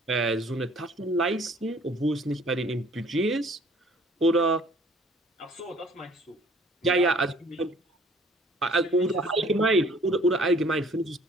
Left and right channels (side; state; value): both; normal; correlation 0.56